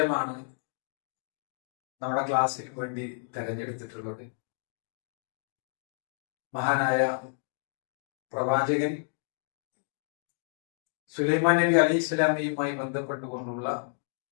നമ്മുടെ ക്ലാസ്സിന് വേണ്ടി തെരഞ്ഞെടുത്തിട്ടുള്ളത്. മഹാനായ പ്രവാചകൻ സുലൈമാൻ നബി അലൈഹി സ്വലാമയുമായി ബന്ധപ്പെട്ടുകൊണ്ടുള്ള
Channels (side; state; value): right; silent; digital silence